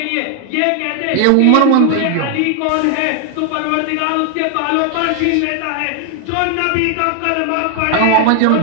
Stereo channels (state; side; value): different; both; correlation 0.00